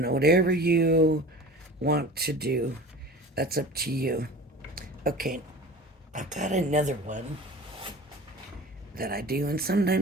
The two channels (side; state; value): both; normal; correlation 0.38